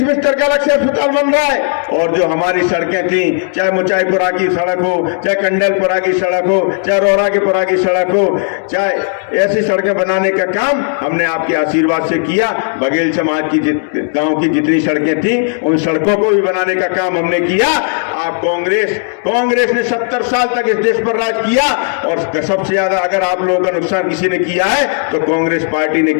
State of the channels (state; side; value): silent; right; digital silence